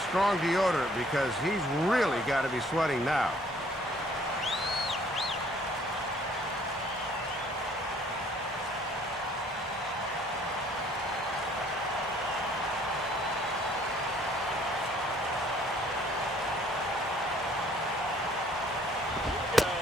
strong deodorant because he's really got to be sweating now.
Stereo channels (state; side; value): normal; both; correlation 0.59